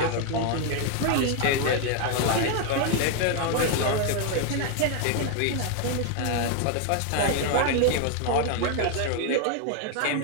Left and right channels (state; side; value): different; both; correlation 0.01